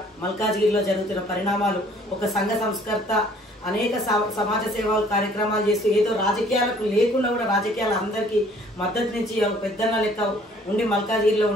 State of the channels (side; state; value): both; normal; correlation 0.57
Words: మల్కాజ్గిరిలో జరుగుతున్న పరిణామాలు, ఒక సంఘ సంస్కర్త అనేక సమాజ సేవా కార్యక్రమాలు చేస్తూ ఏదో రాజకీయాలకు లేకుండా కూడా రాజకీయాలు అందరికీ మద్దతు నుంచి పెద్దన్న లెక్క ఉండి మల్కాజ్గిరిలో